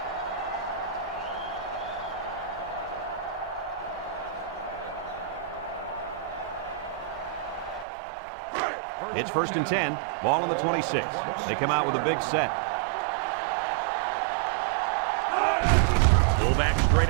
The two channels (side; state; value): left; drops out; at 7.9 s